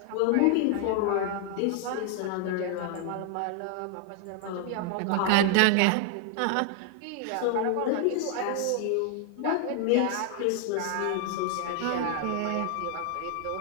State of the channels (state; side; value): different; both; correlation 0.00